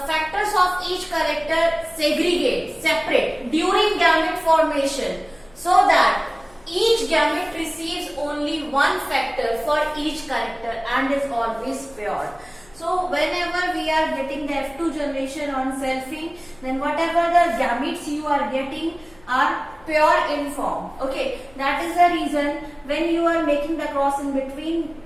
of each character segregate, separate during gamete formation, so that each gamete receives only one factor for each character and is always pure. So whenever we are getting the F2 generation on selfing, then whatever the gametes you are getting are pure in form. Okay, that is the reason when you are making the cross in between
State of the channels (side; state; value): left; noise; hum, 28 dB below the sound